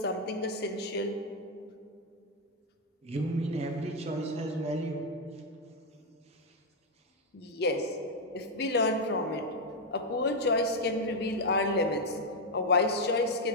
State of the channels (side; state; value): both; normal; correlation 0.02